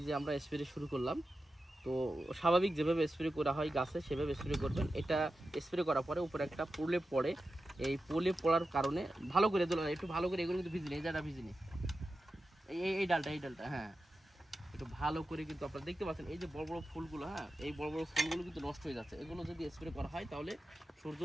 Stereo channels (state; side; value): normal; both; correlation 0.92